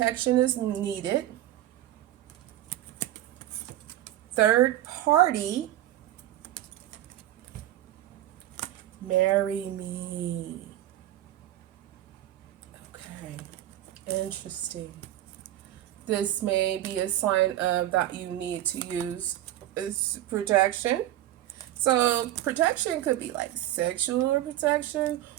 is needed. Third party, marry me. Okay, interesting. This may be a sign of that you need to use protection. So protection could be like sexual protection,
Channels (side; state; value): left; quieter; 13.7 dB